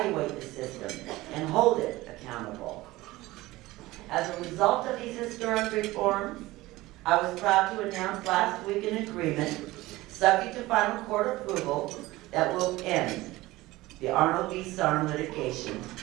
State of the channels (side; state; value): left; quieter; 18.7 dB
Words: the system and hold it accountable. As a result of these historic reforms, I was proud to announce last week an agreement, subject to final court approval, that will end the Arnold v. Sharpe litigation